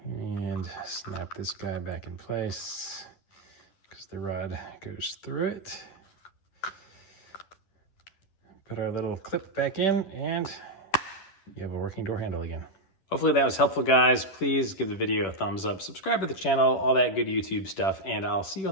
And snap this guy back in place because the rod goes through it. Put our little clip back in and you have a working door handle again. Hopefully that was helpful, guys. Please give the video a thumbs up, subscribe to the channel, all that good YouTube stuff, and I'll see you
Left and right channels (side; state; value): right; late; 10 ms